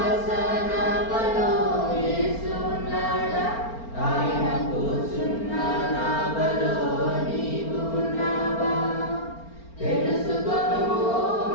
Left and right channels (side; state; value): right; late; 4.4 ms